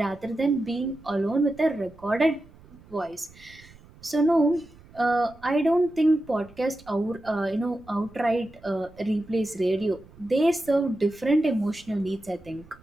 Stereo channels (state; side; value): noise; right; rumble, 24 dB below the sound